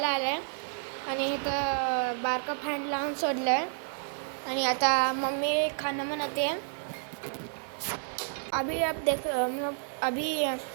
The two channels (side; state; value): left; silent; digital silence